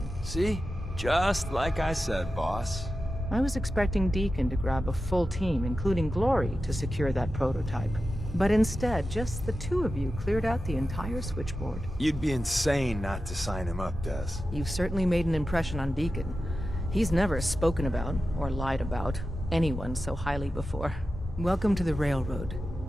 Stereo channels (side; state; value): both; normal; correlation 0.92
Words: See? Just like I said, boss. I was expecting Deacon to grab a full team, including Glory, to secure that prototype. But instead, just the two of you cleared out the entire switchboard. You'd be insane not to sign him up, Des. You've certainly made an impression on Deacon. He's never spoken about, or lied about, anyone so highly before. Welcome to the Railroad,